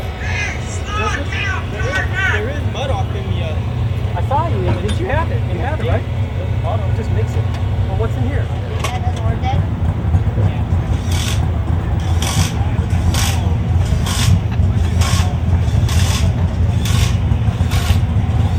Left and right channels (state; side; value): identical; both; correlation 1.00